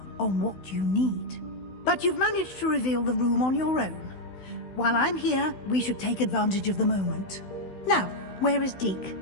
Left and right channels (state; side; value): late; right; 16 ms